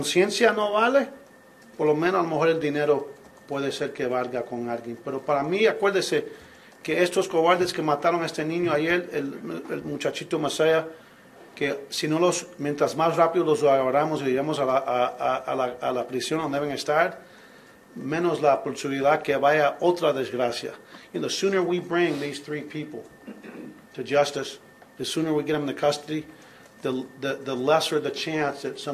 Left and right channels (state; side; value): identical; both; correlation 1.00